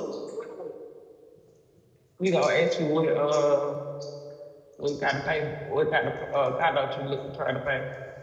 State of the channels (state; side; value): identical; both; correlation 1.00